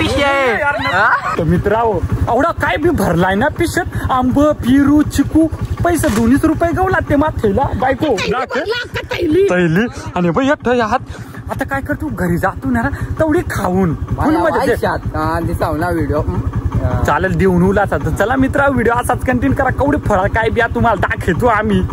आहे. मित्रांनो, एवढा काय बी भरलाय ना पिशत. आंब, पिरू, चिकू, पैसे 2 रुपये गाव लागते माथेला. बायको तैली आणि बाई एकटं हात. आता काय करतो, घरी जातो ना तेवढी खाऊन फुल मजा. दिसावला व्हिडिओ चालेल, देऊन उलाचा. तर चला मित्रा, व्हिडिओ असाच कंटिन्यू करा. कवडी फळ काय बिया तुम्हाला दाखवतो आम्ही.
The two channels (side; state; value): both; identical; correlation 1.00